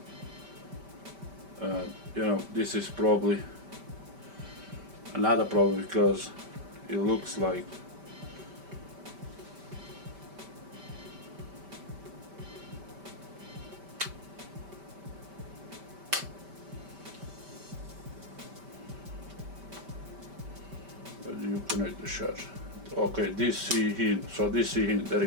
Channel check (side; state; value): left; late; 5.1 ms